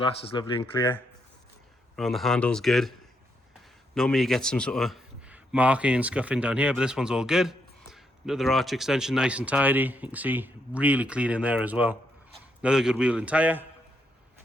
is lovely and clear. Around the handles, good. Normally you get some sort of marking and scuffing down here, but this one's all good. Another arch extension, nice and tidy. You can see really clean in there as well. Another good wheel and tyre.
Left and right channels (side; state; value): both; normal; correlation 0.78